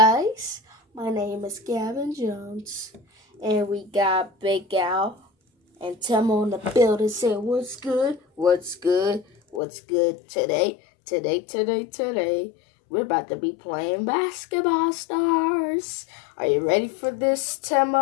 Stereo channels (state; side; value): drops out; right; at 9.6 s